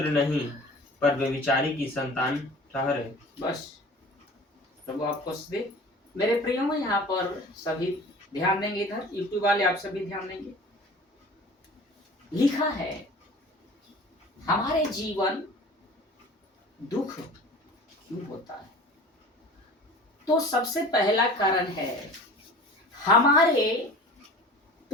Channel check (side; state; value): both; normal; correlation 0.42